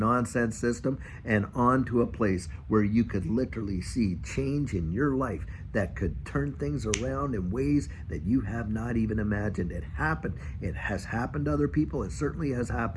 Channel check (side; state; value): both; identical; correlation 1.00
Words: system and onto a place where you could literally see change in your life that could turn things around in ways that you have not even imagined. It happened. It has happened to other people. It certainly has